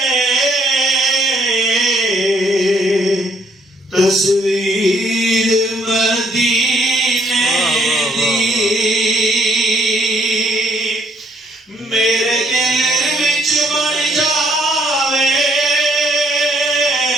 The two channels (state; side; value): normal; both; correlation 0.68